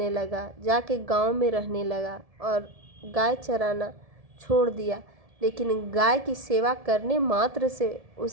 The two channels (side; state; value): left; late; 1.7 ms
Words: लगा, जाके गांव में रहने लगा और गाय चराना छोड़ दिया। लेकिन गाय की सेवा करने मात्र से